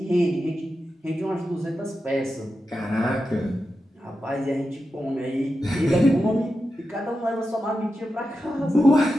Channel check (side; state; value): both; normal; correlation 0.90